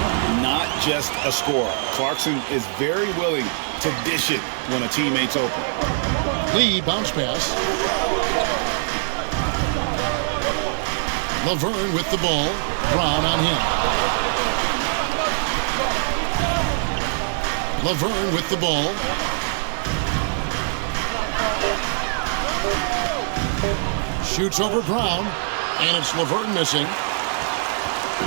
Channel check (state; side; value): silent; left; digital silence